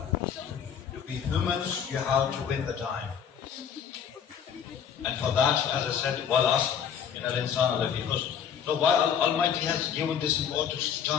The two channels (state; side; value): quieter; right; 8.0 dB